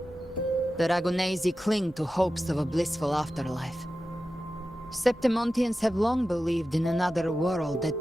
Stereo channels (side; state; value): both; normal; correlation 0.93